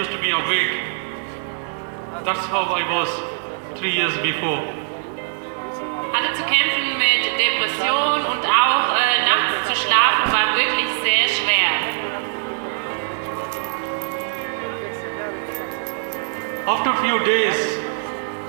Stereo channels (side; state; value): left; silent; digital silence